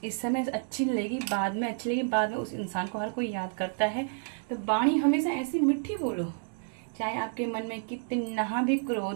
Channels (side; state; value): left; silent; 58 dB below the other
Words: इस समय अच्छी लगेगी, बाद में अच्छी लगेगी, बाद में उस इंसान को हर कोई याद करता है। तो वाणी हमेशा ऐसी मीठी बोलो, चाहे आपके मन में कितना भी